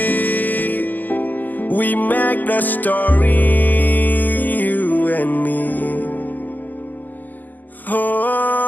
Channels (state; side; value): late; right; 0.084 ms